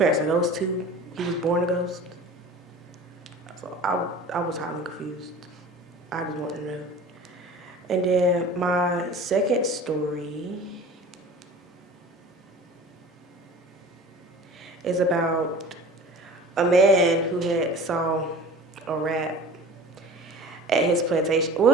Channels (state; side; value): normal; both; correlation 0.40